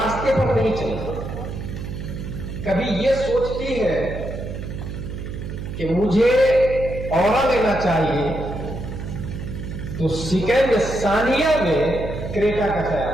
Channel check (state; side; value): noise; right; hum, 7 dB below the sound